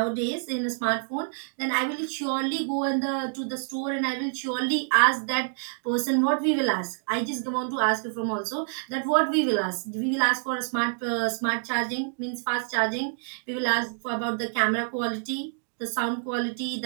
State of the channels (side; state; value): left; silent; digital silence